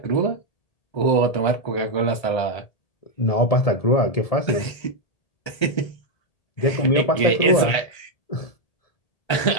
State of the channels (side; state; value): right; late; 1.3 ms